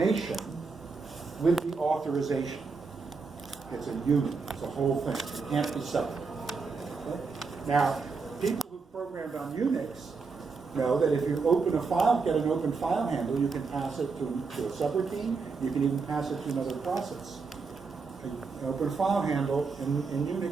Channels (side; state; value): left; quieter; 4.7 dB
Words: with the authorization. It's a unit, it's a whole thing. It can't be separate. Okay? Now, people who programmed on Unix know that if you open a file, get an open file handle, you can pass it to a subroutine, you can even pass it to another process. An open file handle in